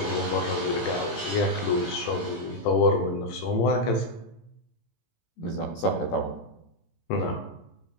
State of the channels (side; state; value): right; late; 18 ms